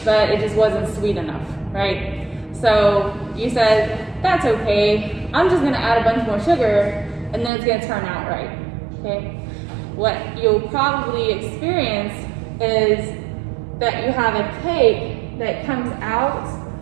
but it just wasn't sweet enough, right? So you said, that's okay, I'm just gonna add a bunch more sugar and then it's gonna turn out right, okay? What you'll probably experience is that you have a cake that comes out,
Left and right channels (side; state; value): left; drops out; at 7.5 s